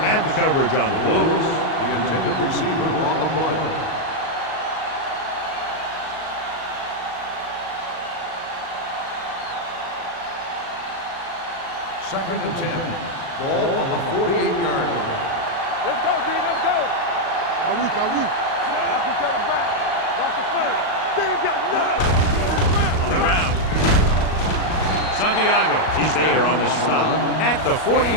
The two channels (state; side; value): late; right; 38 ms